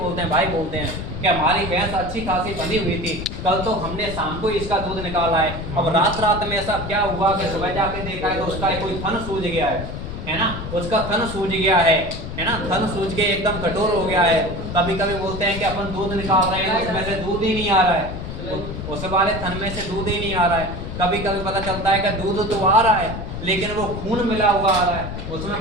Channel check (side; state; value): left; noise; rumble, 7 dB below the sound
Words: हैं, भाई बोलते हैं कि हमारी भैंस अच्छी खासी बंधी हुई थी, कल तो हमने शाम को इसका दूध निकाला है। अब रात में ऐसा क्या हुआ कि सुबह जाके देखा है तो उसका कोई थन सूज गया है ना, उसका थन सूज गया है ना, थन सूज के एकदम कठोर हो गया है। कभी कभी बोलते हैं कि अपन दूध निकाल रहे हैं, उसमें से दूध ही नहीं आ रहा है, उस वाले थन में से दूध ही नहीं आ रहा है। कभी कभी पता चलता है कि दूध तो आ रहा है लेकिन वो खून मिला हुआ आ रहा है,